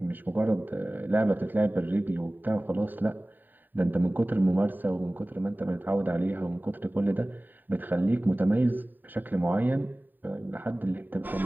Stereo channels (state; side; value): late; left; 0.090 ms